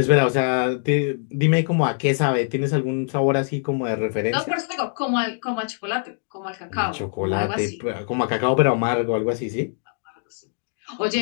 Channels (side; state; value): right; silent; digital silence